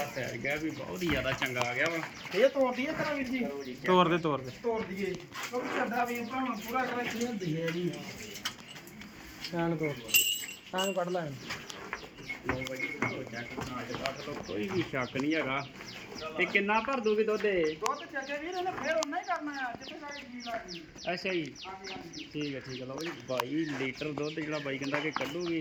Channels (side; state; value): both; identical; correlation 1.00